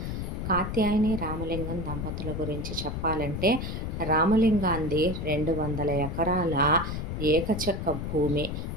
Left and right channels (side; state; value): left; noise; rumble, 4 dB below the sound